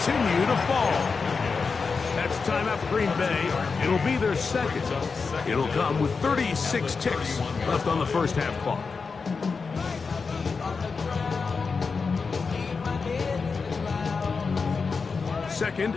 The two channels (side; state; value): right; quieter; 4.9 dB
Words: to fall. That's time out for Green Bay. It'll be their 2nd. It'll come with 36 ticks left on the 1st half clock. Second